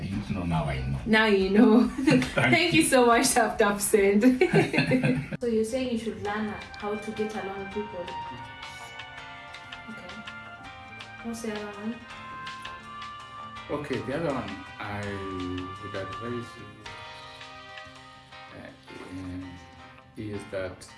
know, now I know. Now you know. Thank you so much, Taptapsend. So you're saying you should learn how to get along with people? Okay. What's the other one? Okay, the other one I would advise you is that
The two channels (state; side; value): identical; both; correlation 1.00